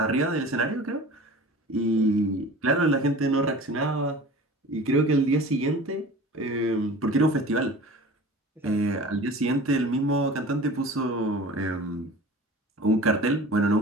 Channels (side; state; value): both; normal; correlation 0.40